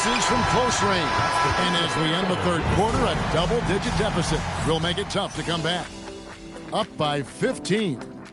from close range. And as we end the third quarter, a double-digit deficit will make it tough to come back. Up by 15.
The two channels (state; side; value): identical; both; correlation 1.00